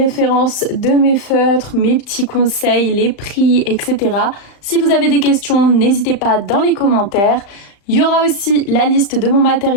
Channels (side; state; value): right; late; 35 ms